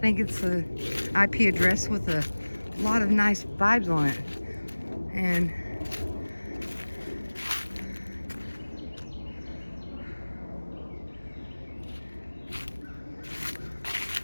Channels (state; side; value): inverted; both; correlation -1.00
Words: it's a IP address with a lot of nice vibes on it. And